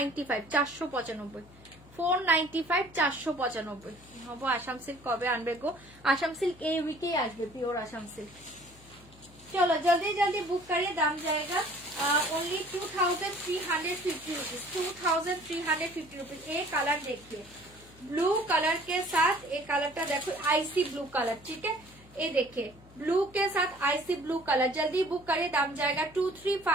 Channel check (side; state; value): left; noise; hum, 23 dB below the sound